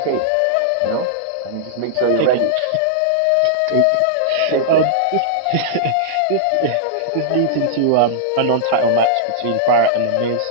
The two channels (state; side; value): different; both; correlation -0.02